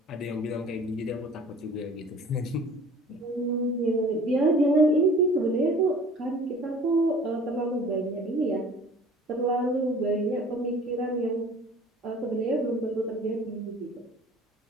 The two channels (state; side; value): normal; both; correlation 0.47